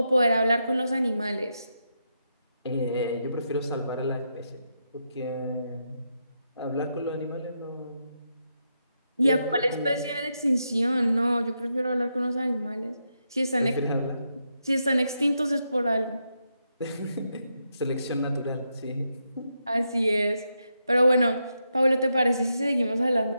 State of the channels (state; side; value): inverted; both; correlation -0.83